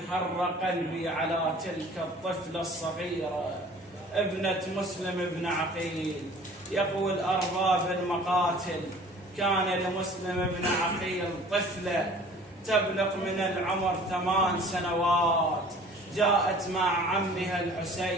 حر قلبي على تلك الطفلة الصغيرة ابنة مسلم بن عقيل. يقول أرباب المقاتل: كان لمسلم بن عقيل طفلة تبلغ من العمر 8 سنوات، جاءت مع عمها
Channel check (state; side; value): normal; both; correlation 0.49